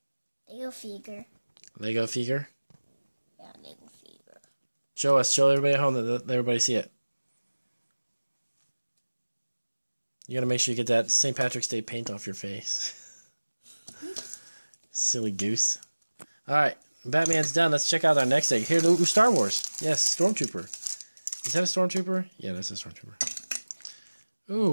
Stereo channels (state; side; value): inverted; both; correlation -1.00